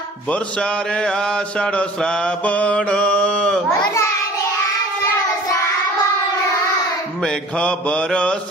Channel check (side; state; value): both; normal; correlation 0.46